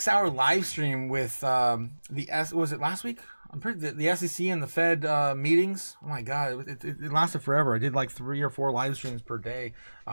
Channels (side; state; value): both; inverted; correlation -1.00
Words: live stream with was it last week? The SEC and the Fed meetings. Oh my God, it lasted forever. I did like 3 or 4 live streams per day,